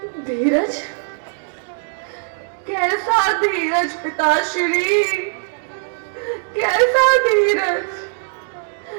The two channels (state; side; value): silent; left; digital silence